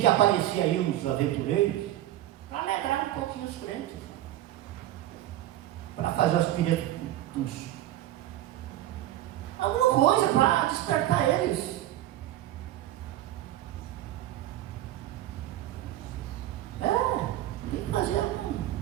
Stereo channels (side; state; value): left; quieter; 13.8 dB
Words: aparecer aí uns aventureiros para alegrar um pouquinho os crentes, para fazer os piretos, alguma coisa para despertar eles. Tem que fazer